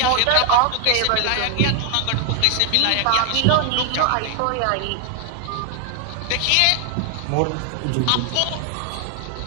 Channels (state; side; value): different; both; correlation 0.00